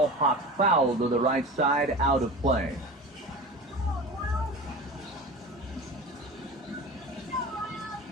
popped foul to the right side, out of play.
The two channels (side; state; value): both; normal; correlation 0.32